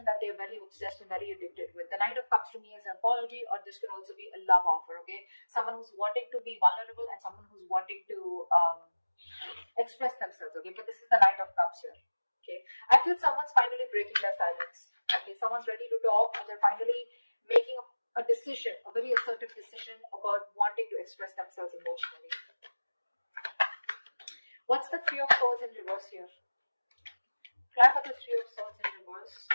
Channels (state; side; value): inverted; both; correlation -1.00